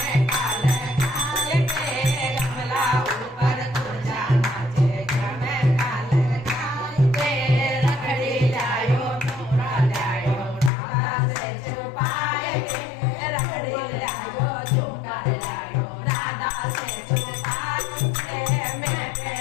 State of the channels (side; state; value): right; drops out; at 10.7 s